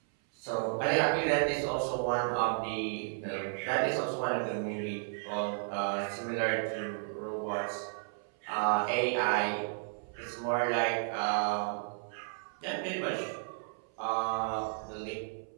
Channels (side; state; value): left; silent; 56 dB below the other